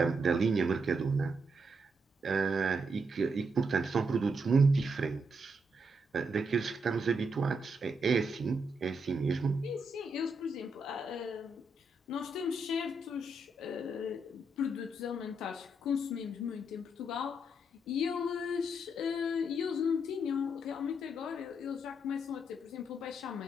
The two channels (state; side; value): normal; both; correlation 0.79